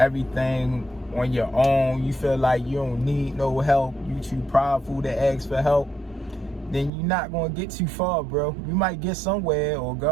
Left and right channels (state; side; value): drops out; left; at 6.9 s